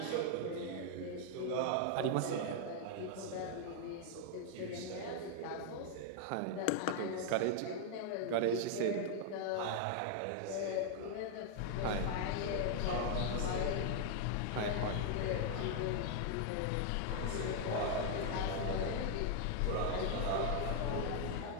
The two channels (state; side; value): different; both; correlation 0.00